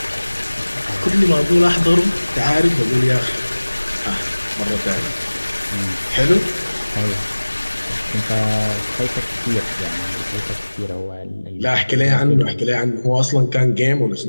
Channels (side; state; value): both; inverted; correlation -1.00